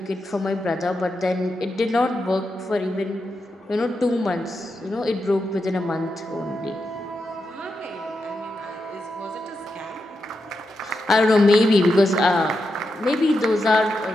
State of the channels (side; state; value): both; normal; correlation 0.86